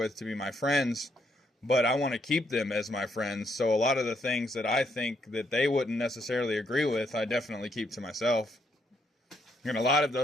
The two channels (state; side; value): normal; both; correlation 0.74